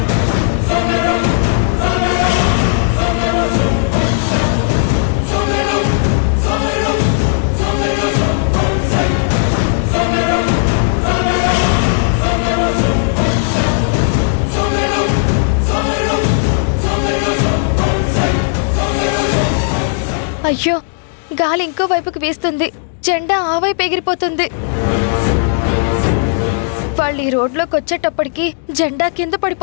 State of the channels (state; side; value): silent; right; digital silence